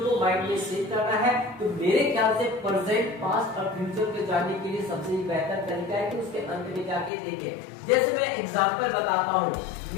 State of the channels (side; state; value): right; drops out; at 7.1 s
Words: को माइंड में सेट करना है। तो मेरे ख्याल से प्रेजेंट, पास्ट और फ्यूचर को जानने के लिए सबसे बेहतर तरीका है कि उसके अंत में जाके देखें। जैसे मैं एग्जांपल बताता हूँ,